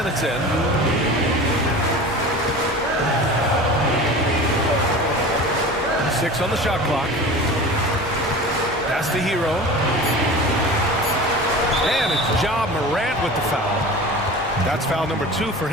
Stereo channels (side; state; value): both; normal; correlation 0.36